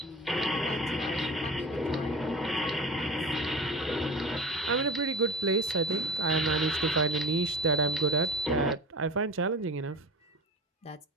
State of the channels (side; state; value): both; normal; correlation 0.32